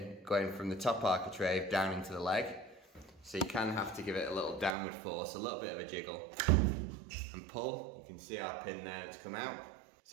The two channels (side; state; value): left; drops out; at 4.8 s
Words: going from the top architrave down into the leg, so you can have to give it a little downward force, a little bit of a jiggle, and pull. You can see our pin there that's come out.